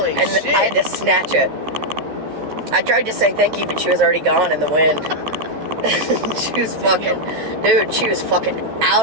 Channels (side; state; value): left; late; 13 ms